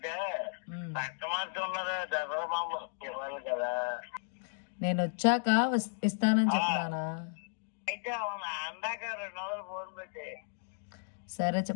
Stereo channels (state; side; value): silent; right; digital silence